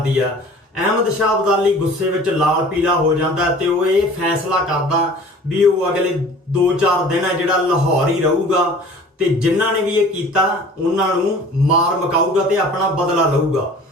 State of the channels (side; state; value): both; normal; correlation 0.46